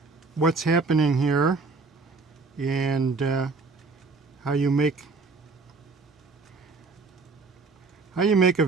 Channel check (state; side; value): quieter; left; 4.1 dB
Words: what's happening here and how you make a